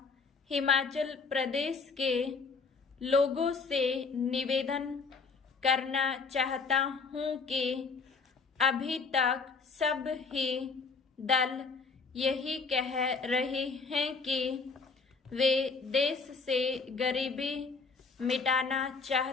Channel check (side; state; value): right; quieter; 4.6 dB